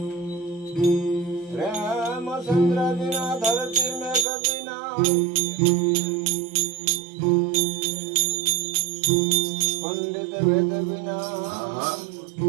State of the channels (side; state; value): left; drops out; at 4.2 s